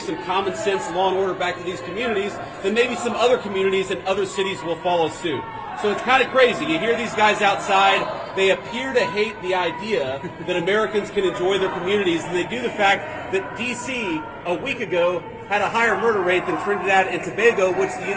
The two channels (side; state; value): both; identical; correlation 1.00